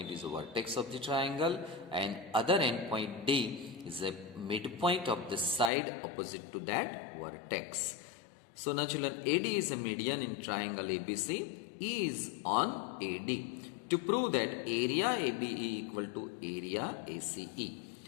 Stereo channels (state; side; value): drops out; right; at 5.7 s